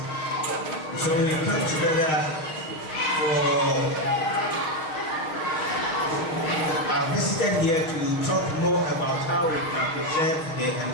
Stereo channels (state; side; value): late; right; 6.4 ms